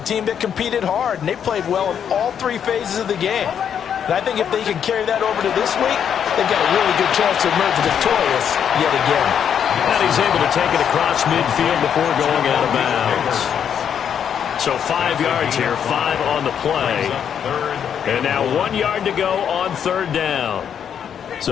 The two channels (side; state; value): right; quieter; 8.3 dB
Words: that competed hard, and they played well in all 3 phases of the game. And I think if they can carry that over to this week, they've got a really good chance to emerge victorious yet again. And he's able to take it across midfield before going out of bounds. So 5 yards here, 5 on the play. And now 1 yard to go on third down.